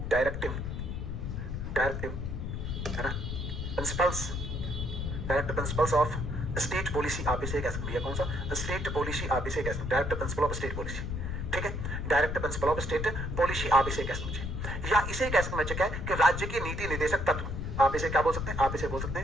डायरेक्टिव है ना, principles, directive principles of state policy आप इसे कह सकते हैं। कौन सा? स्टेट पॉलिसी आप इसे कह सकते हैं, directive principle of state policy. ठीक है, directive principle of state policy आप इसे कह सकते हैं, या इसे कह सकते हैं कि राज्य के नीति निर्देशक तत्व। आप इसे क्या बोल सकते हैं? आप इसे बोल सकते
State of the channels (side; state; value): left; noise; rumble, 4 dB below the sound